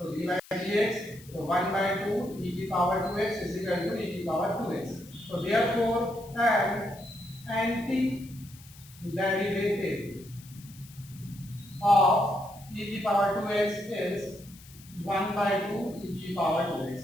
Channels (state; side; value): noise; left; hiss, 21 dB below the sound